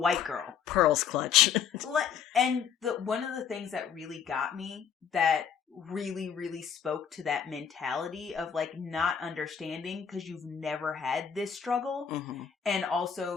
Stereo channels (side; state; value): right; quieter; 7.6 dB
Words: girl. Pearl's clutch. And one of the things that really got me, that really, really spoke to that mentality of like not understanding because you've never had this struggle, and